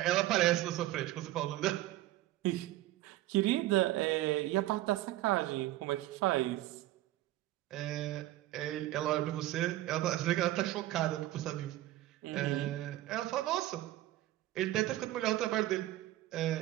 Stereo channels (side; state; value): left; quieter; 15.6 dB